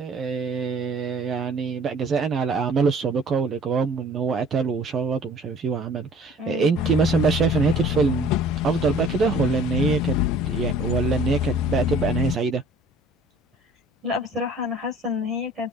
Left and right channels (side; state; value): both; normal; correlation 0.50